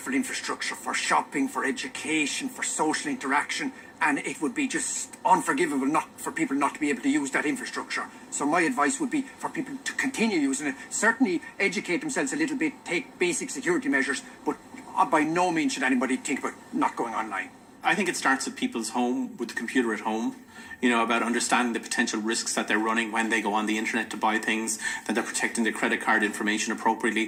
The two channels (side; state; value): both; identical; correlation 1.00